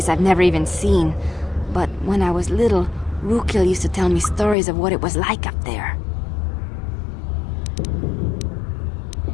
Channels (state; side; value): drops out; right; at 4.5 s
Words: I've never even seen. But when I was little, Rukil used to tell me stories of what it was like up there.